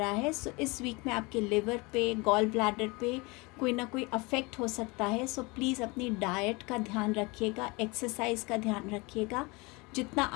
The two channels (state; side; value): quieter; right; 26.3 dB